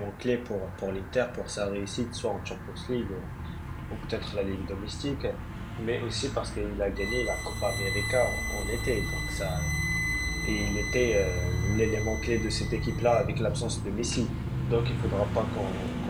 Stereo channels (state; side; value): identical; both; correlation 1.00